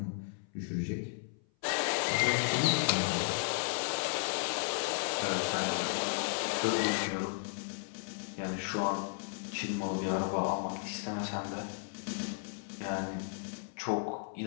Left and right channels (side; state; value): right; silent; 55 dB below the other